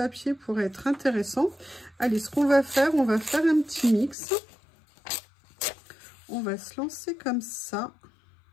pourrait être intéressant. Allez, ce qu'on va faire, on va faire un petit mix. On va se lancer comme ça.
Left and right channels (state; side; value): drops out; right; at 4.2 s